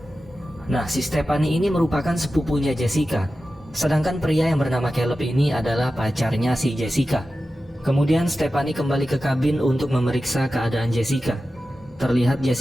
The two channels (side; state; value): both; normal; correlation 0.93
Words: Nah, si Stephanie ini merupakan sepupunya Jessica. Sedangkan pria yang bernama Caleb ini adalah pacarnya si Jessica. Kemudian Stephanie kembali ke kabin untuk memeriksa keadaan Jessica. Terlihat